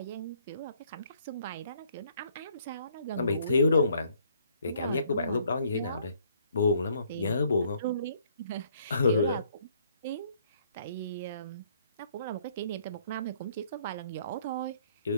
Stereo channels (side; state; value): both; inverted; correlation -0.64